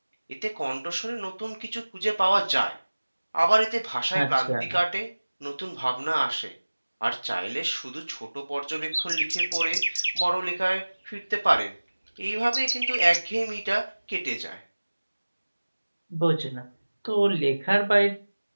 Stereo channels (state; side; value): inverted; both; correlation -1.00